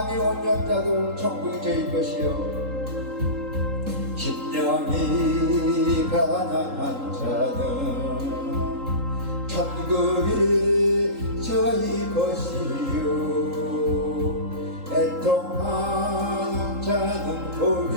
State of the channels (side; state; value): left; late; 3.8 ms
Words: 온유한 자도 천국이 저희 것이요 심령이 가난한 자는 천국이 저희 것이요 애통하는 자는